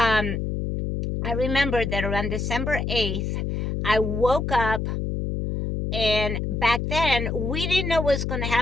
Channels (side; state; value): left; noise; hum, 2 dB below the sound